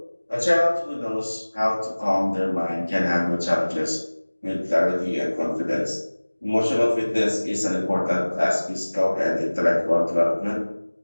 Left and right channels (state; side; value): inverted; both; correlation -1.00